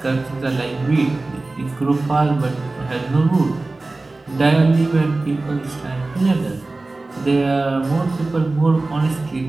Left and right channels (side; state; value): left; quieter; 3.2 dB